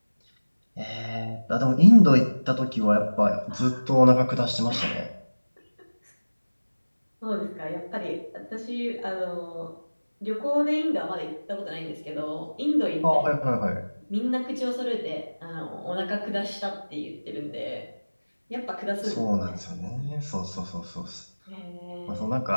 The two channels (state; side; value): inverted; both; correlation -1.00